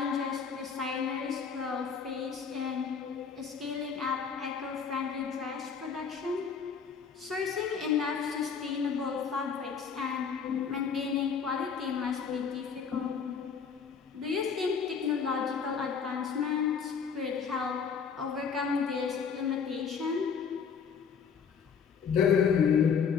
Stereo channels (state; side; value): quieter; right; 6.4 dB